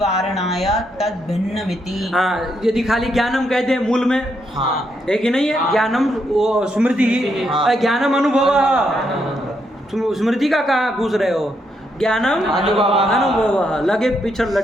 वारणाय तद भिन्नमिति। हाँ, यदि खाली ज्ञानम कहते हैं मूल में, हाँ। है कि नहीं है? ज्ञानम वो स्मृति ही, हाँ। ज्ञानम अनुभव। स्मृति का कहाँ घुस रहे हो? ज्ञानम अनुभव, लगे पिछड़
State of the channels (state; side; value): normal; both; correlation 0.78